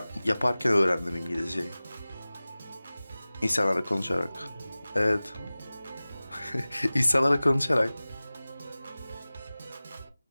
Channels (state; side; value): inverted; both; correlation -0.98